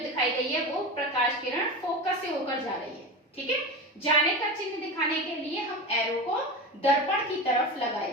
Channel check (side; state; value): both; normal; correlation 0.25